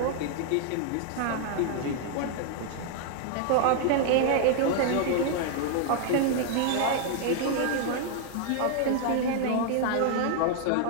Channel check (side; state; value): both; different; correlation 0.00